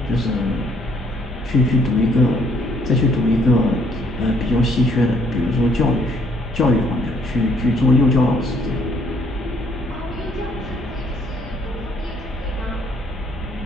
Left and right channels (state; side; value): normal; both; correlation 0.66